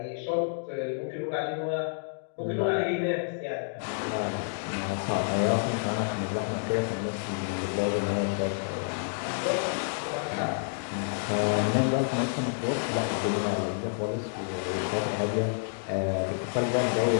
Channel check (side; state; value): right; silent; digital silence